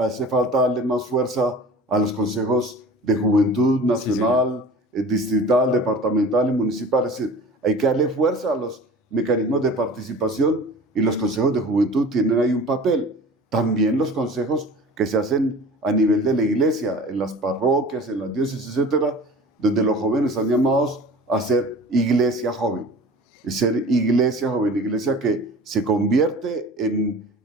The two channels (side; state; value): both; normal; correlation 0.40